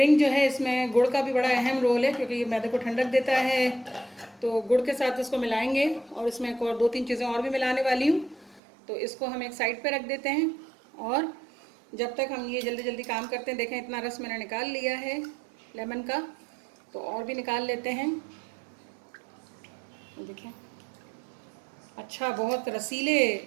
जो है इसमें गुड़ का भी बड़ा अहम रोल है, क्योंकि ये मैदे को ठंडक देता है। तो गुड़ के साथ इसको मिलाएंगे और इसमें एक और 2-3 चीज़ें और भी मिलाने वाली हूँ। तो इसको हम एक साइड पे रख देते हैं और जब तक हम ये जल्दी जल्दी काम करते हैं। देखें इतना रस मैंने निकाल लिया है लेमन का, तो और भी निकाल लेते हैं। देखें अच्छा बहुत रसीले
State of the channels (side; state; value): left; drops out; at 8.6 s